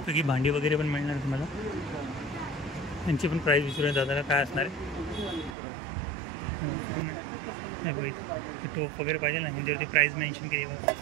भांडी वगैरे पण मिळणार तुम्हाला. त्यांची पण प्राईस विचारूया दादाला काय असणार आहे. हे बघा इथे टोप वगैरे पाहिजे ना ह्यांच्यावरती प्राईस मेन्शन केली बघा.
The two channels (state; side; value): drops out; left; at 5.6 s